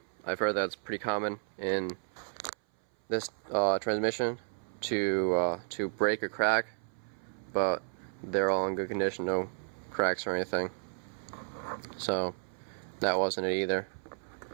I've heard that's pretty common in this transmission to break or crack, but they're all in good condition, no cracks or anything. So that wasn't it either.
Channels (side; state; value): left; silent; 56 dB below the other